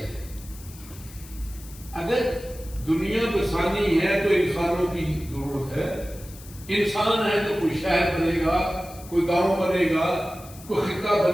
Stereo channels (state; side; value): noise; left; hiss, 19 dB below the sound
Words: اگر دنیا بسانی ہے تو انسانوں کی ضرورت ہے. انسان ہے تو کوئی شہر بنے گا, کوئی گاؤں بنے گا, کوئی خطہ